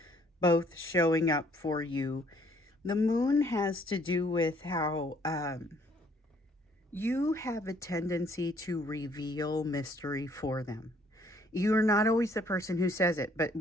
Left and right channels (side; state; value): both; normal; correlation 0.63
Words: both showing up for you. The Moon has to do with how you have a tendency to reveal mystery for them. You're not always the person who says it, but